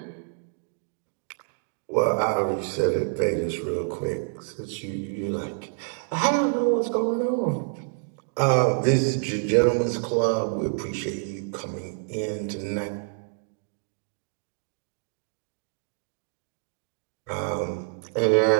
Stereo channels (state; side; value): silent; left; digital silence